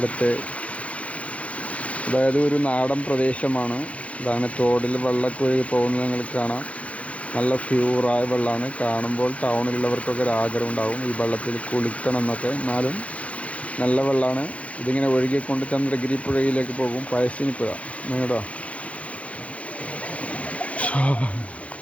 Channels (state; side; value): late; right; 0.064 ms